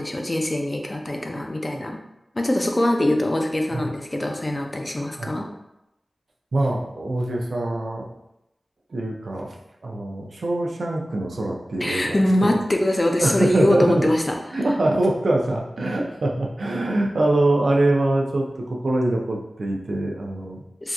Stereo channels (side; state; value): both; normal; correlation 0.96